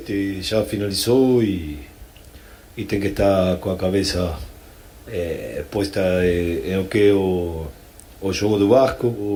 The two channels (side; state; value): both; identical; correlation 1.00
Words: já finalizou e tem que estar com a cabeça posta em o que é o jogo do Vasco.